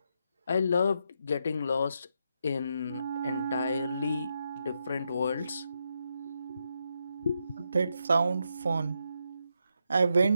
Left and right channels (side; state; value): both; inverted; correlation -0.82